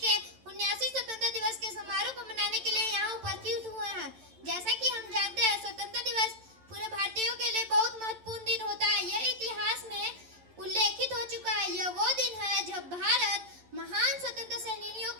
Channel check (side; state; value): left; late; 11 ms